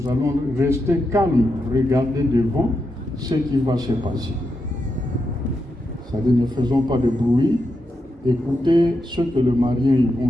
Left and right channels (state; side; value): normal; both; correlation 0.85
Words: allons rester calmes, regarder devant ce qui va se passer. C'est-à-dire, ne faisons pas de bruit, écoutez ce que le marié ils vont